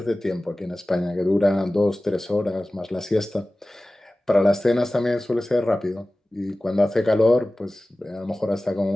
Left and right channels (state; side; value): normal; both; correlation 0.97